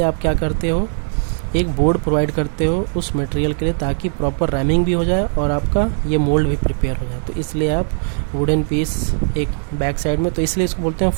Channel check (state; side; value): silent; left; 58 dB below the other